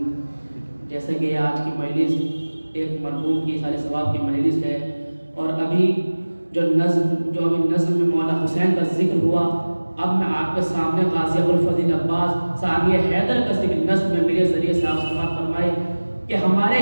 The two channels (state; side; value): inverted; both; correlation -1.00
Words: جیسے کہ آج کی مجلس ایک مرحوم کی سال ثواب کی مجلس ہے اور ابھی جو ابھی نظم میں مولا حسین کا ذکر ہوا، اب میں آپ کے سامنے غازی ابوالفضل عباس ثانی حیدر کا ذکر نظم میں میرے ذریعے سے آپ سماعت فرمائے کہ ہمارے